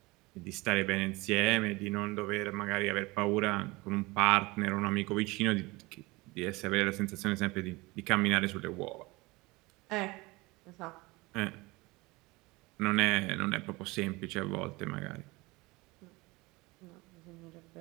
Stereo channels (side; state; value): left; quieter; 22.9 dB